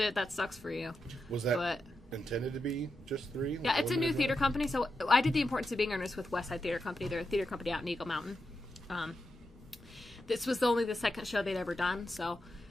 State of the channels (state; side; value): normal; both; correlation 0.87